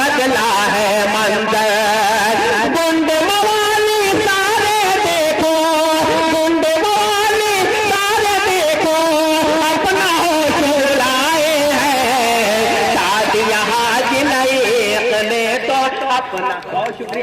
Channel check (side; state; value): both; identical; correlation 1.00